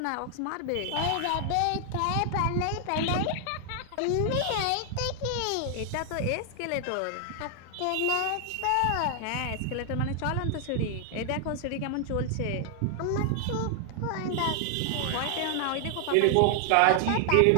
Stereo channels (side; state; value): both; different; correlation 0.00